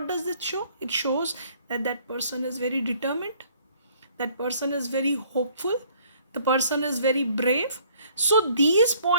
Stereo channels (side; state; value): both; inverted; correlation -0.59